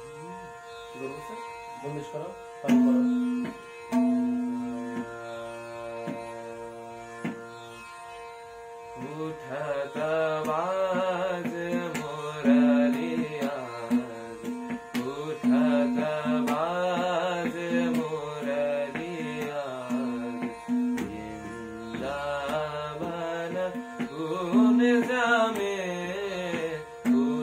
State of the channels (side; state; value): both; identical; correlation 1.00